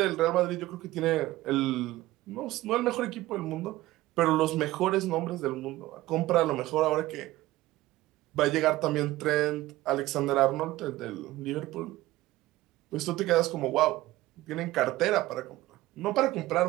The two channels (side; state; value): left; quieter; 17.2 dB